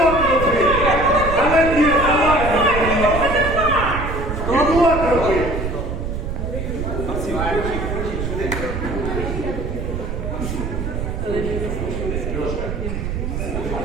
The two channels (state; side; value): noise; right; rumble, 4 dB below the sound